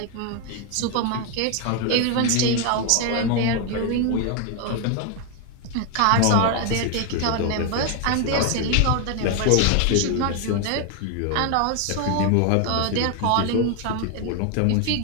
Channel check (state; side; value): different; both; correlation 0.01